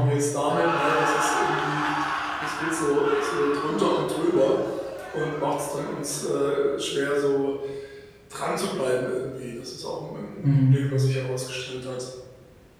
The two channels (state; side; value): identical; both; correlation 1.00